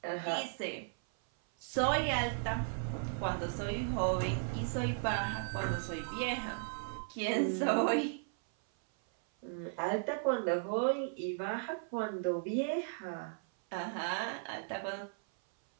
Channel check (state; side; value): silent; left; 54 dB below the other